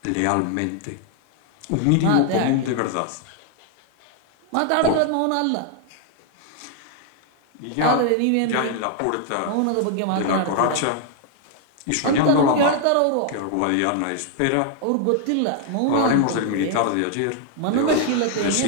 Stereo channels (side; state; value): both; different; correlation 0.00